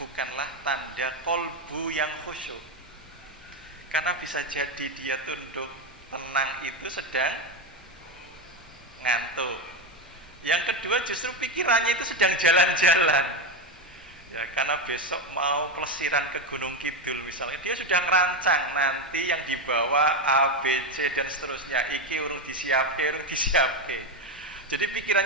tanda kolbu yang khusyuk. Karena bisa jadi dia tunduk tenang itu sedang ngantuk. Yang kedua justru pikirannya itu sedang jalan-jalan. Ya, karena besok mau pelesiran ke Gunung Kidul misalnya, dia sudah ngerancang nanti yang dibawa A, B, C dan seterusnya. Iki urung disiapke. Jadi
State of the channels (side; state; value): both; normal; correlation 0.11